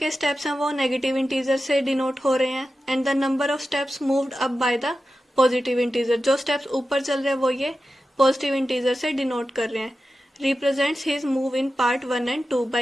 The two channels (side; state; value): both; normal; correlation 0.92